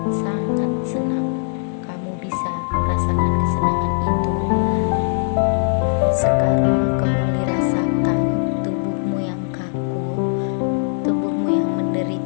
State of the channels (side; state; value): right; silent; 65 dB below the other